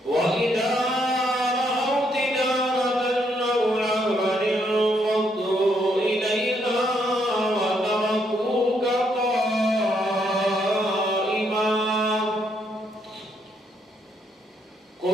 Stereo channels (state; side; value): normal; both; correlation 0.74